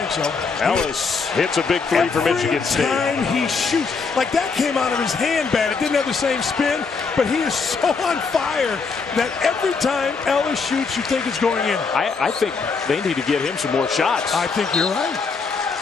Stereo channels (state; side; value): quieter; right; 4.9 dB